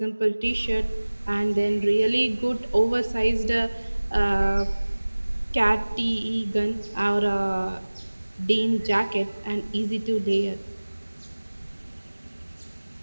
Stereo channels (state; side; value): inverted; both; correlation -1.00